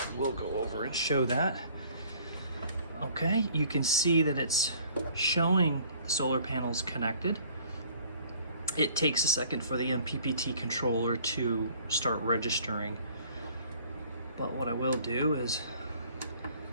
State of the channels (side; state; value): both; inverted; correlation -0.55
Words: we'll go over and show that. Okay, you can see that it's showing the solar panels connected. It takes a second for the MPPT controller to start registering, but what I will do is